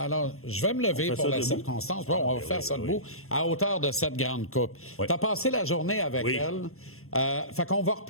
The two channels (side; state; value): right; late; 0.62 ms